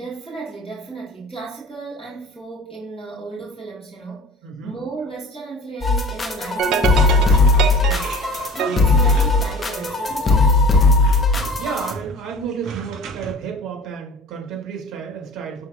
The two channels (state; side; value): normal; both; correlation 0.41